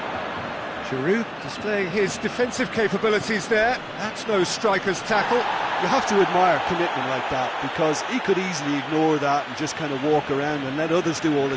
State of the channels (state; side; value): identical; both; correlation 1.00